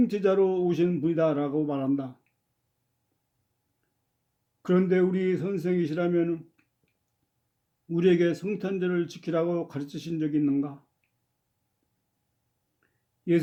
오신 분이다라고 말한다. 그런데 우리 선생이시라면 우리에게 성탄절을 지키라고 가르치신 적이 있는가?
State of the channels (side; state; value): both; identical; correlation 1.00